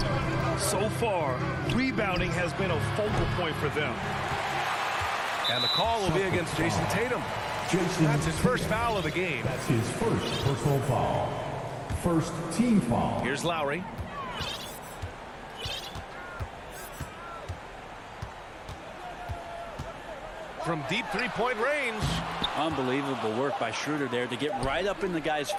So far, rebounding has been a focal point for them. And the call will be against Jason Tatum. That's his first foul of the game. That's his first personal foul. First team foul. Here's Lowry. From deep three-point range. Unbelievable work by Schroeder there to get right up in the guy's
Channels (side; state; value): both; identical; correlation 1.00